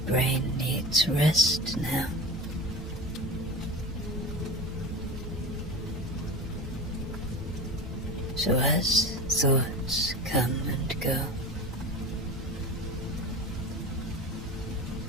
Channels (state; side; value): normal; both; correlation 0.31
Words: brain needs rest now. So as thoughts come and go,